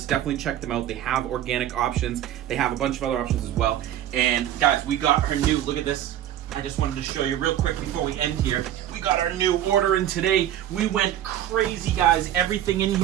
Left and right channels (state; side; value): quieter; left; 11.8 dB